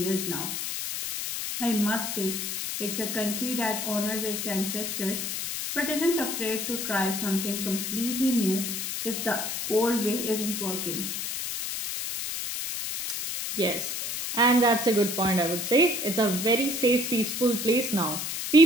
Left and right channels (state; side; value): noise; left; hiss, 3 dB below the sound